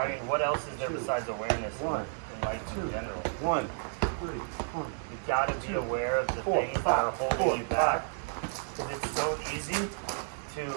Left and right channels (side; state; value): left; silent; 57 dB below the other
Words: I mean, what else is there two, besides awareness one, in life in general? 1, 3, 1. You gotta be aware of the 4, things that 5, are holding 4, you back. Because it's so easy to